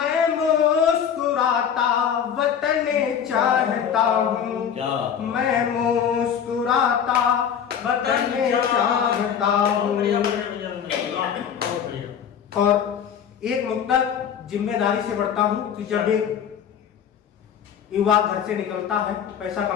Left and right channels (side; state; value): right; quieter; 8.2 dB